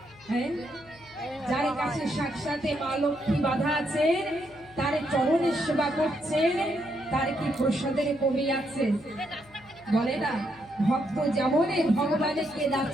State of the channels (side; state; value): left; noise; hum, 25 dB below the sound